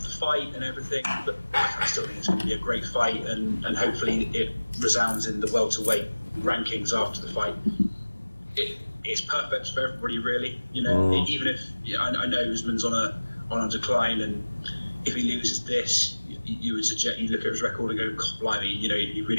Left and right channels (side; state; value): both; inverted; correlation -1.00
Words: the fight and everything, but I still think it's going to be a great fight, and hopefully it resounds in the welterweight rankings after the fight. It's perfect for everybody, really. Even if I know Usman's on a decline, and if he loses this, you would suggest you look at his record and go, God, blimey, he